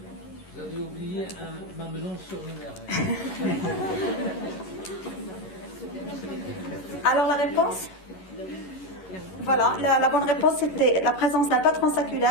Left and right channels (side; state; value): right; late; 11 ms